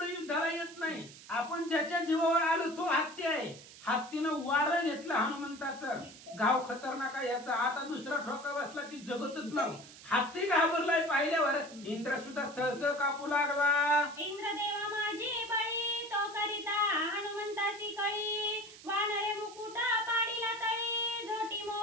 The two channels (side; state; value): right; noise; hiss, 18 dB below the sound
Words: युद्धाला येत नाही. आपण ज्याच्या जीवावर आलो तो हत्ती आहे. हत्तीनं वारं घेतलं हनुमंताचं. गाव खतरनाक आहे याचा. आता दुसरा ठोका बसला की जगतच नाही. हत्ती घाबरलाय पाहिल्यावर. इंद्र सुद्धा चळचळ कापू लागला. इंद्रदेवा माझी बळी तो करिता हनुमंतासी कळी वानरे मुकुटा पाडीला तळी झोटी